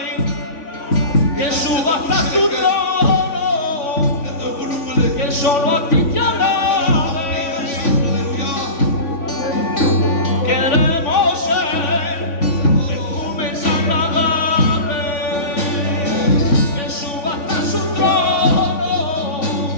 que suba hasta tu trono, que solo a ti te alabe. Queremos ser perfumes agradables, que suba hasta su trono,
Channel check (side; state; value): right; late; 3.6 ms